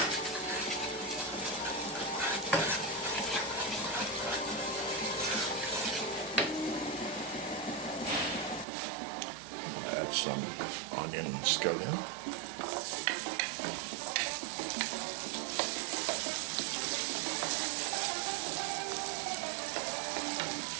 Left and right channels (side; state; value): left; drops out; at 8.7 s